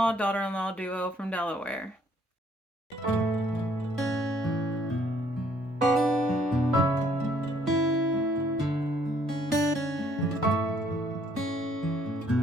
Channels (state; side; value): normal; both; correlation 0.65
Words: daughter-in-law duo from Delaware.